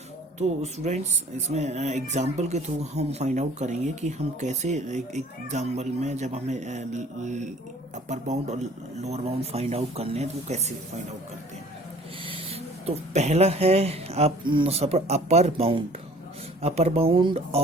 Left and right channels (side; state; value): both; normal; correlation 0.51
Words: तो स्टूडेंट्स इसमें एग्जांपल के थ्रू हम फाइंड आउट करेंगे कि हम कैसे एक एग्जांपल में जब हमें अपर बाउंड और लोअर बाउंड फाइंड आउट करने हैं तो वो कैसे फाइंड आउट करते हैं। तो पहला है आप अपर बाउंड